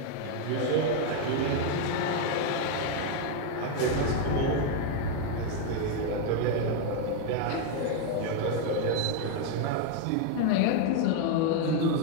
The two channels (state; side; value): different; both; correlation 0.01